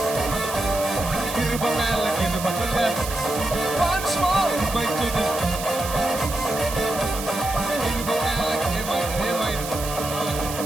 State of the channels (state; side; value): noise; right; hiss, 8 dB below the sound